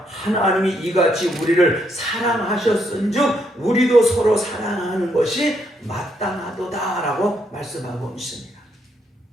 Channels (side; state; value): both; normal; correlation 0.75